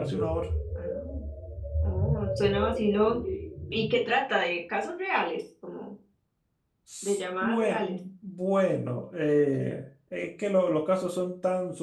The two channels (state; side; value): identical; both; correlation 1.00